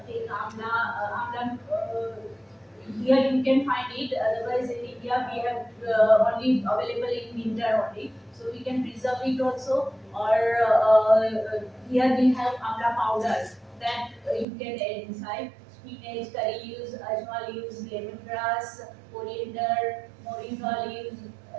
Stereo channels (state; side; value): drops out; left; at 14.5 s